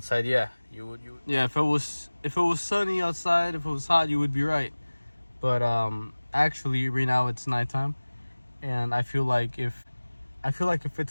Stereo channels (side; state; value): both; inverted; correlation -1.00